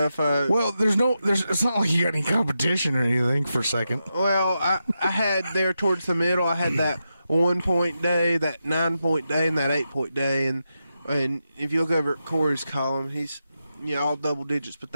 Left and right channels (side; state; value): both; inverted; correlation -0.87